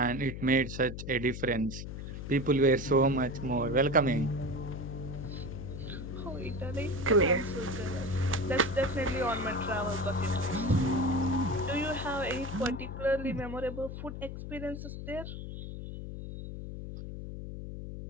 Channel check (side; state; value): left; noise; hum, 8 dB below the sound